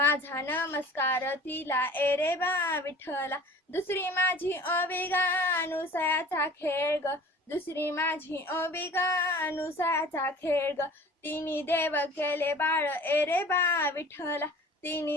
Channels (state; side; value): normal; both; correlation 0.44